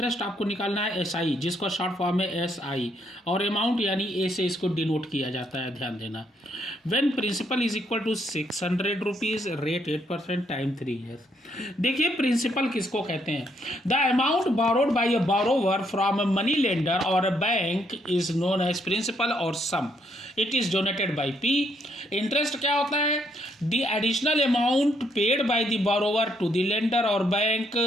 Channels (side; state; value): both; normal; correlation 0.73